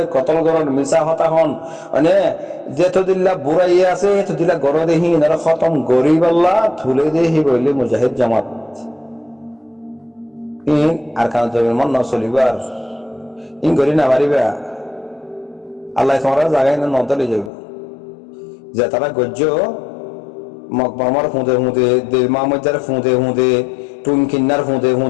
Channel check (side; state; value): right; drops out; at 17.5 s